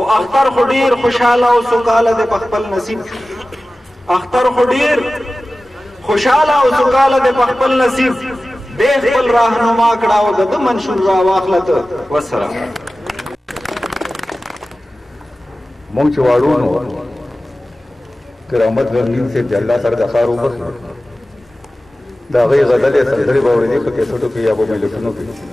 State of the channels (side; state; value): both; normal; correlation 0.96